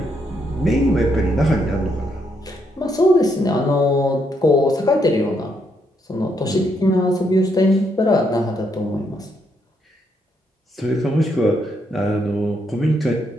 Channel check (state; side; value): normal; both; correlation 0.76